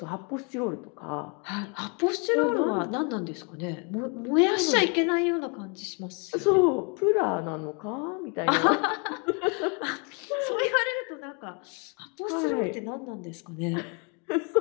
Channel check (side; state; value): right; quieter; 34.3 dB